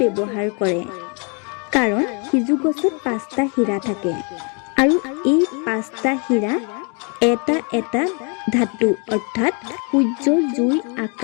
ব্যৱহাৰ কৰে, কাৰণ সিজু গছত 5টা হীৰা থাকে আৰু এই 5টা হীৰা এটা এটা ধাতু অৰ্থাৎ সূৰ্য, জুই,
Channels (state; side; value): quieter; right; 35.8 dB